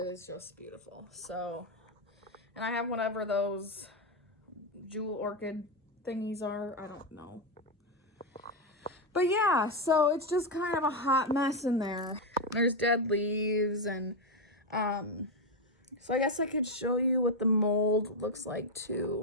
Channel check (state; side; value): normal; both; correlation 0.06